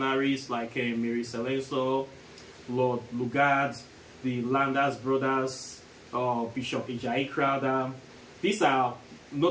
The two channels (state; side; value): identical; both; correlation 1.00